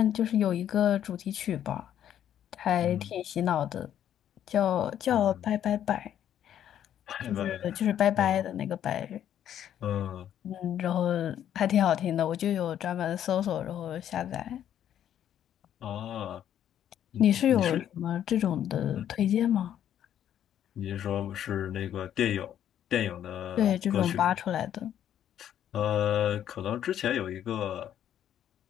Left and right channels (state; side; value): quieter; right; 10.4 dB